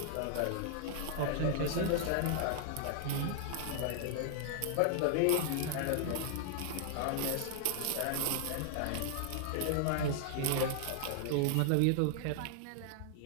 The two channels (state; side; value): different; both; correlation 0.00